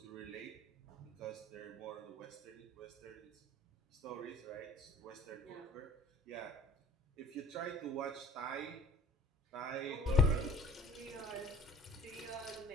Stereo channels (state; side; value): normal; both; correlation 0.49